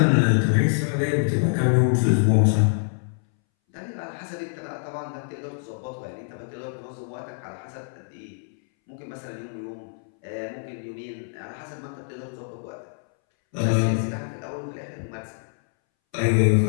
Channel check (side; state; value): right; silent; 61 dB below the other